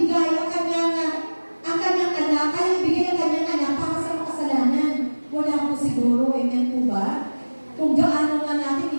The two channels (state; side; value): inverted; both; correlation -1.00